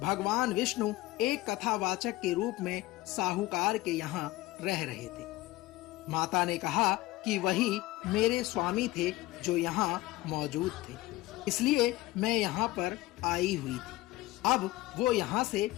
विष्णु एक कथावाचक के रूप में साहूकार के यहाँ रह रहे थे। माता ने कहा कि वही मेरे स्वामी थे जो यहाँ मौजूद थे, इसलिए मैं यहाँ पर आई हुई थी। अब वो यहाँ से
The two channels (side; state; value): right; quieter; 18.2 dB